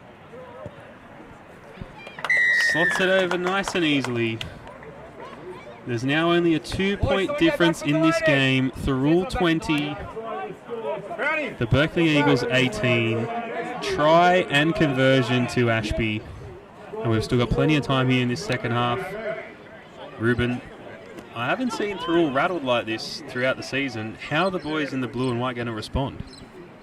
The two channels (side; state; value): both; identical; correlation 1.00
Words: Slots it over nice and easily. There's now only a 2-point difference in this game. Thirroul 20, the Berkeley Eagles 18. Try and conversion to Ashby. And we've still got plenty of time here in this second half. Ruben, I haven't seen Thirroul rattled like this throughout the season. How are the boys in the blue and white going to respond?